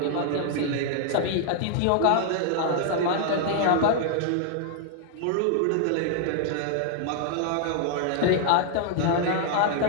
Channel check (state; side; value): different; both; correlation -0.01